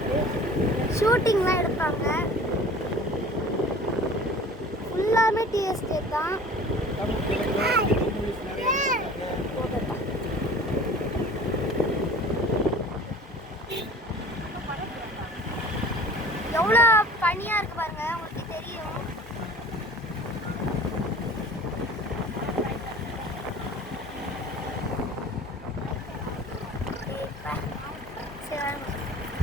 ஷூட்டிங்லாம் எடுப்பாங்க. ஃபுல்லாமே டீ எஸ்டேட் தான். எவ்வளோ பனியா இருக்கு பாருங்க, உங்களுக்கு தெரியும்.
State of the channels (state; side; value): normal; both; correlation 0.44